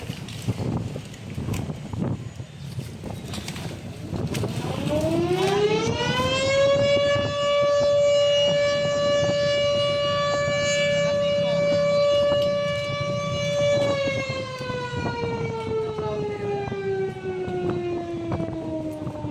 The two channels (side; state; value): both; identical; correlation 1.00